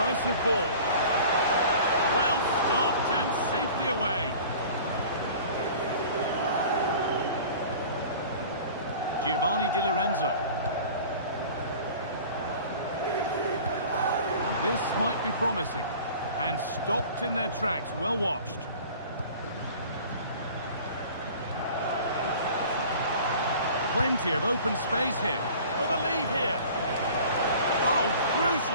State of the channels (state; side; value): inverted; both; correlation -0.44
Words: ball. Well stopped and safely away. Giovanni Di Lorenzo. This might be promising. And stopped in their tracks, well watched. Plenty of open space here. For the lead here. Oh,